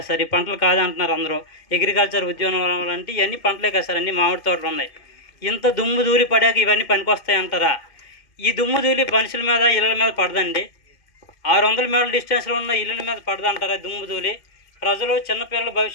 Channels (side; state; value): right; late; 2.5 ms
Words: సార్, ఈ పంటలు కాదంటున్నారు అందరూ. అగ్రికల్చర్ ఉద్యోగం అంటే ఇవన్నీ పంటలే కదా సార్, అన్నీ మామిడి తోటలు ఉన్నాయి. ఇంత దుమ్ము ధూళి పడాక ఇవన్నీ పనికొస్తాయి అంటారా? ఈ దుమ్ము ధూళి మనుషుల మీద ఇళ్ళ మీద పడదండి. 600 మీటర్ల డిస్టెన్స్లో ఉన్న ఇళ్ళ మీద పడదంటారా దుమ్ము ధూళి? ప్రజలు చిన్నపిల్లల